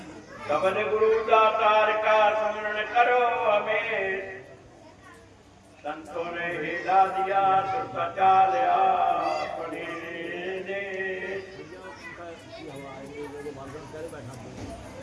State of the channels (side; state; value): both; identical; correlation 1.00